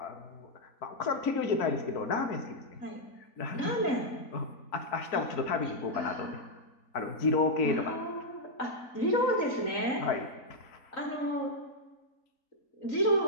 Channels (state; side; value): late; right; 3.9 ms